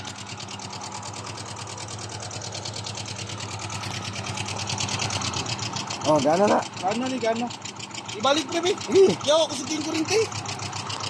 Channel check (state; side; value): identical; both; correlation 1.00